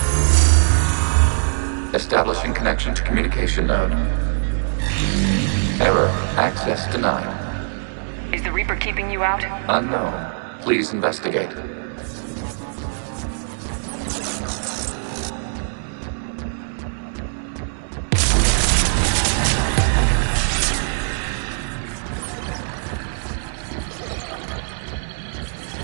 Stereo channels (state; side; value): silent; left; 63 dB below the other